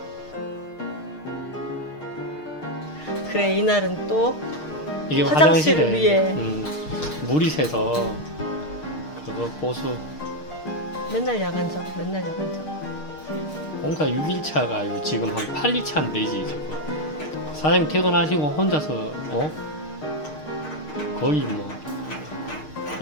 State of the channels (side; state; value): right; late; 6.5 ms